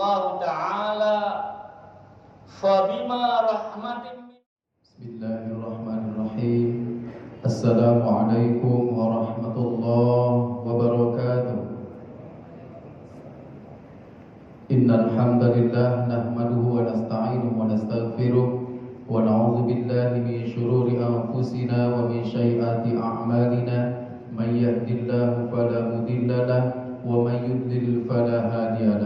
تعالى فبما رحمة بسم الله الرحمن الرحيم السلام عليكم ورحمة الله وبركاته إن الحمد لله نحمده ونستعينه ونستغفره ونعوذ بالله من شرور أنفسنا ومن سيئات أعمالنا من يهد الله فلا مضل له ومن يضلل فلا هادي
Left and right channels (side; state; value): both; identical; correlation 1.00